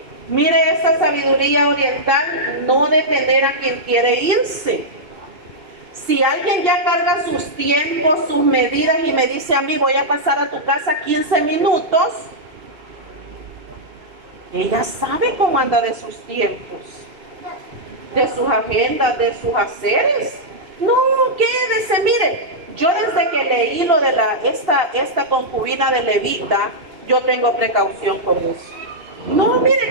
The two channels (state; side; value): late; left; 2.7 ms